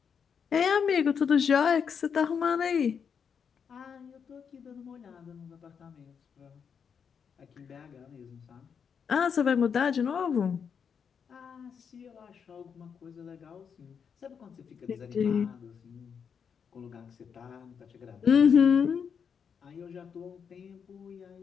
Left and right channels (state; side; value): quieter; right; 6.8 dB